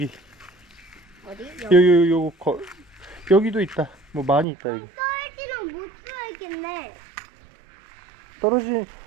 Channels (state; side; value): drops out; left; at 4.5 s